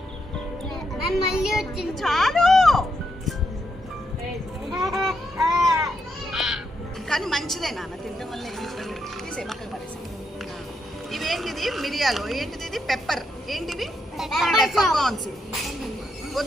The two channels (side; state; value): both; normal; correlation 0.80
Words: చాలు. కానీ మంచిదే నాన్న, తినడం వల్ల తీసే పక్కన పడేసి. ఇవేంటిది? మిరియాలు. ఏంటిది? ఇది పెప్పర్. ఏంటివి? Pepper corns.